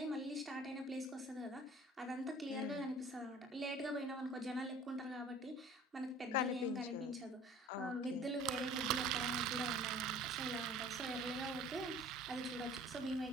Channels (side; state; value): both; normal; correlation 0.47